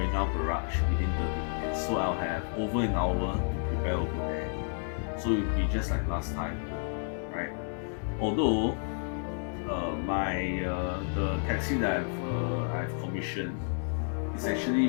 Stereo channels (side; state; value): right; silent; 57 dB below the other